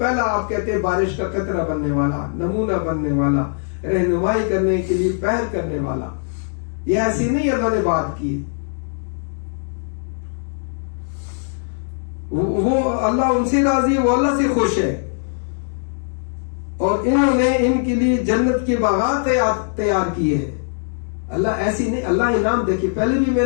آپ کہتے ہیں بارش کا قطرہ بننے والا, نمونہ بننے والا, رہنمائی کرنے کے لیے پہل کرنے والا, یہ ایسی نہیں اللہ نے بات کی. وہ اللہ ان سے راضی ہے, وہ اللہ سے خوش ہے, اور انہوں نے ان کے لیے جنت کے باغات تیار کیے ہیں. اللہ ایسی نہیں, اللہ انعام دیکھیے, پہلے بھی میں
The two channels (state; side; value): silent; right; digital silence